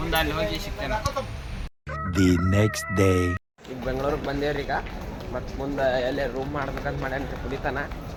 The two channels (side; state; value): both; identical; correlation 1.00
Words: ಅಲ್ಲಿ ಹೋಗಿ ಸಿಗ್ತೇನೆ. The next day. ಈಗ ಬೆಂಗಳೂರಿಗೆ ಬಂದೇವ್ರಿ. ಈಗ ಮತ್ತು ಮುಂದೆ ಎಲ್ಲೇ ರೂಮ್ ಮಾಡ್ಬೇಕಂತ ಮಾಡ್ಯಾನ್ರಿ ಪುನೀತನ.